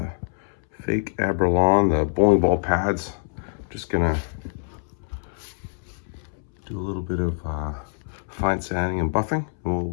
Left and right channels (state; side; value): silent; right; 62 dB below the other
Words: fake Abralon, the bowling ball pads. Just gonna do a little bit of fine sanding and buffing, and we'll